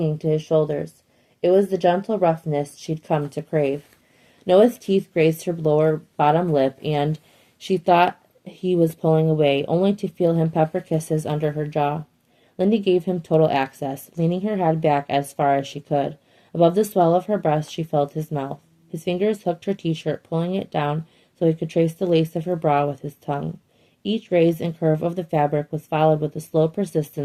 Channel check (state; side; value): identical; both; correlation 1.00